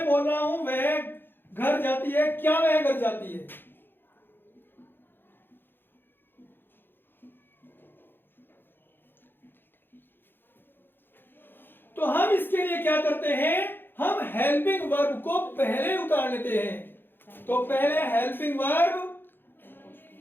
बोल रहा हूं, वह घर जाती है, क्या वह घर जाती है। तो हम इसके लिए क्या करते हैं, हम हेल्पिंग वर्ब को पहले उतार लेते हैं। तो पहले हेल्पिंग वर्ब,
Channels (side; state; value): right; late; 0.10 ms